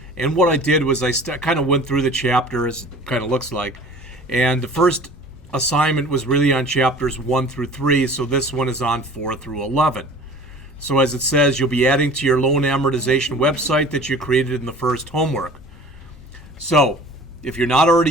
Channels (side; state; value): both; normal; correlation 0.44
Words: And what I did was I kind of went through the chapters, kind of looks like, and the first assignment was really on chapters 1 through 3, so this one is on 4 through 11. So as it says, you'll be adding to your loan amortization website that you created in the first homework. So if you're not already